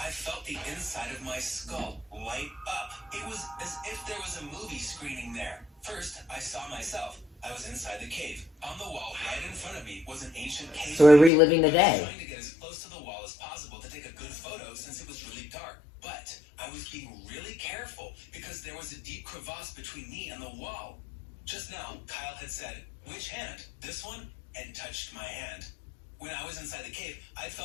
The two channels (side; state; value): right; drops out; at 11.3 s